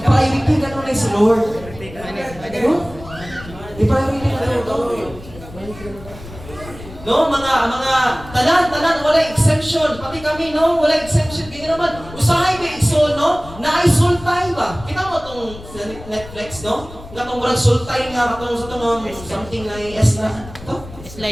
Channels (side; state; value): left; noise; rumble, 16 dB below the sound